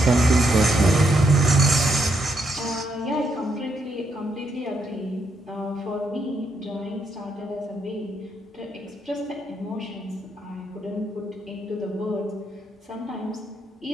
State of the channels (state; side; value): normal; both; correlation 0.78